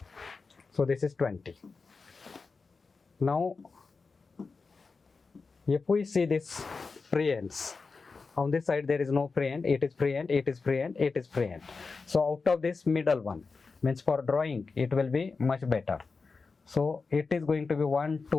So this is 20. Now, if we see this preends, on this side there is no preend, it is preend, it is preend, it is preend. So out of this middle one, means for drawing, it will be much better. So it is going to be 1,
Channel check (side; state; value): right; quieter; 4.4 dB